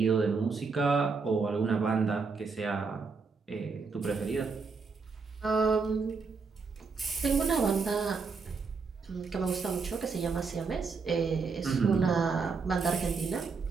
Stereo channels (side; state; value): left; quieter; 4.8 dB